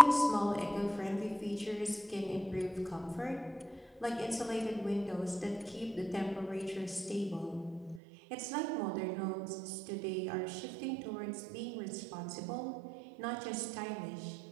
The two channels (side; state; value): left; drops out; at 8.0 s